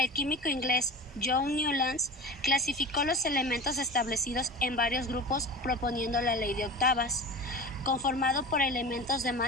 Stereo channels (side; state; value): both; normal; correlation 0.31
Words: químico inglés John Newlands clasificó los elementos establecidos en varios grupos proponiendo la ley de octavas, conformado por elementos de